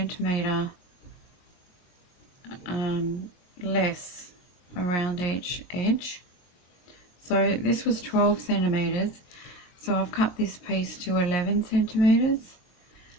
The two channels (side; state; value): right; late; 22 ms